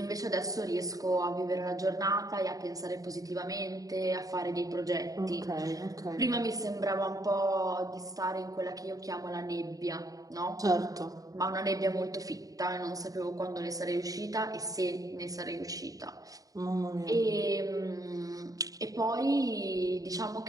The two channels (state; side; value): late; left; 0.17 ms